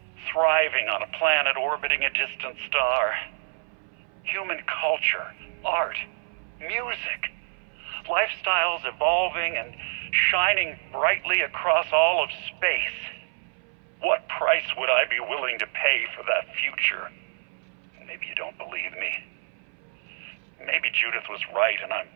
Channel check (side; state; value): left; silent; 58 dB below the other